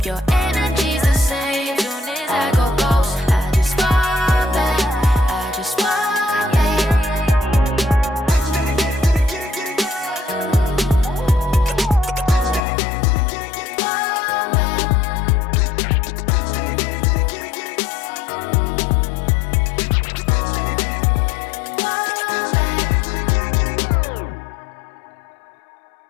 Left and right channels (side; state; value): right; drops out; at 12.6 s